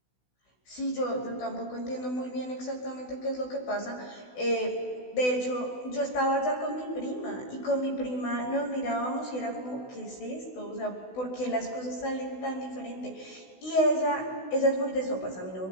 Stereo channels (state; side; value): late; right; 16 ms